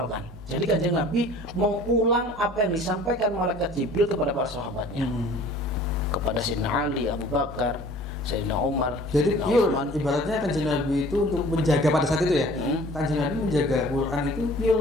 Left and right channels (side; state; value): both; normal; correlation 0.48